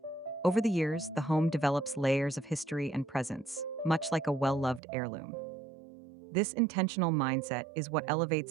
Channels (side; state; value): left; drops out; at 4.8 s